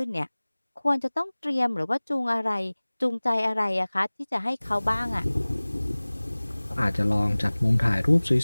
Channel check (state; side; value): inverted; both; correlation -1.00